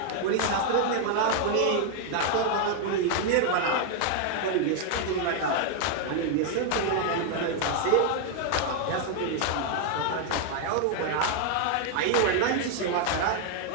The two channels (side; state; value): both; different; correlation 0.00